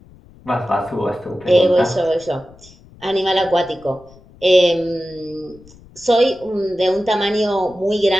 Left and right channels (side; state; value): left; noise; rumble, 25 dB below the sound